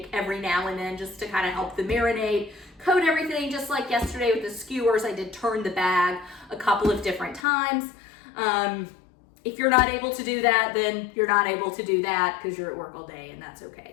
every now and then just to kind of help the marinade, coat everything. Just like yesterday with the skewers, I did turn the bag a couple of different times. If you're not able to do that, then you're not able to do that because you're at work all day, and that's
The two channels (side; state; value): right; drops out; at 7.4 s